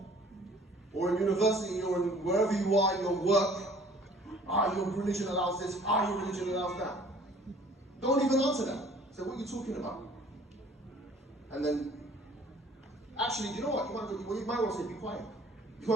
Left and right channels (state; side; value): normal; both; correlation 0.53